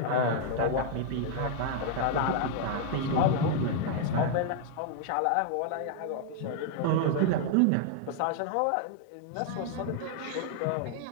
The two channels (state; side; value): different; both; correlation 0.00